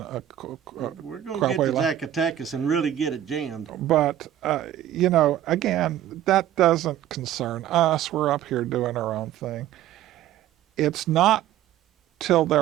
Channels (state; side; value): quieter; left; 11.9 dB